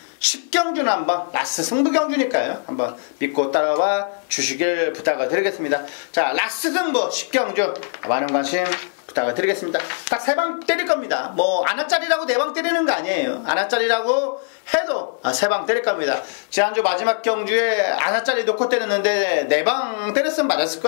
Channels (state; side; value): silent; right; 58 dB below the other